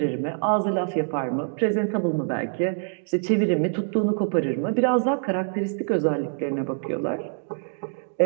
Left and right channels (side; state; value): left; silent; 62 dB below the other